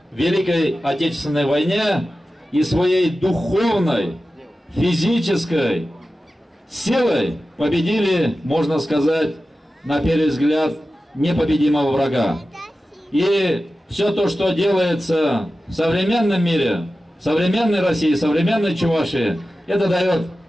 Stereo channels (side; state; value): both; normal; correlation 0.94